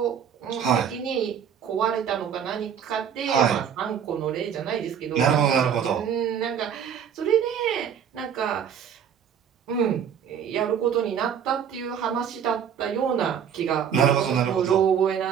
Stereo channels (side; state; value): left; quieter; 8.2 dB